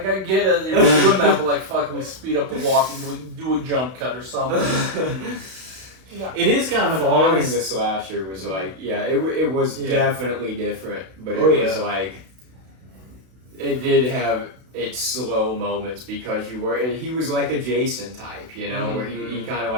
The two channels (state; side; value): late; left; 32 ms